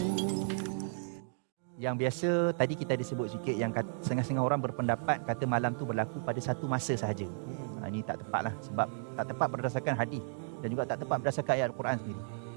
Yang biasa tadi kita ada sebut sikit yang setengah-setengah orang berpendapat kata malam tu berlaku pada satu masa sahaja. Ini tak tepat lah, sebab tak tepat berdasarkan hadis dan juga tak tepat berdasarkan ayat Al-Quran sendiri.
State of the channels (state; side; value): silent; left; digital silence